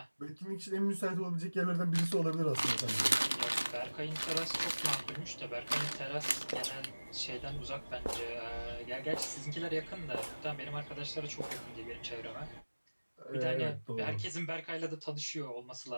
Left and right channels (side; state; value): both; inverted; correlation -1.00